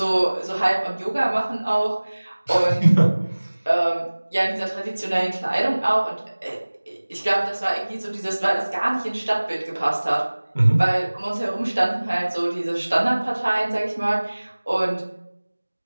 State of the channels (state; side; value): inverted; both; correlation -1.00